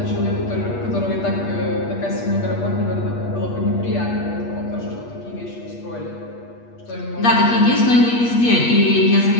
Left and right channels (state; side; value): late; right; 8.4 ms